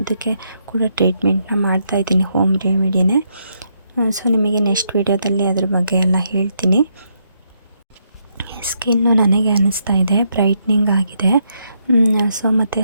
ಕೂಡ ಟ್ರೀಟ್ಮೆಂಟ್ನ ಮಾಡ್ತಾಯಿದ್ದೀನಿ, ಹೋಮ್ ರೆಮಿಡಿನೇ. ಸೊ ನಿಮಗೆ ನೆಕ್ಸ್ಟ್ ವೀಡಿಯೋದಲ್ಲಿ ಅದ್ರ ಬಗ್ಗೆ ಎಲ್ಲ ಹೇಳ್ತೀನಿ. ಸ್ಕಿನ್ನು ನನಗೆ ಅನ್ನಿಸ್ತಾ ಇದೆ ಬ್ರೈಟ್ನಿಂಗ್ ಆಗಿದೆ. ಸೊ ಮತ್ತು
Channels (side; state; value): both; inverted; correlation -0.77